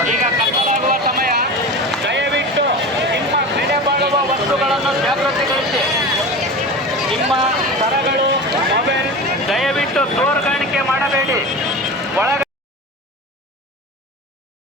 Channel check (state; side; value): normal; both; correlation 0.30